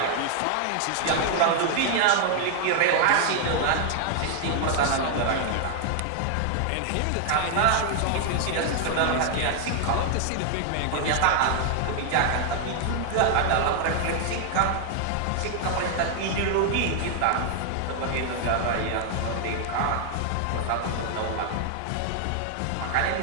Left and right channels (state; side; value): different; both; correlation 0.00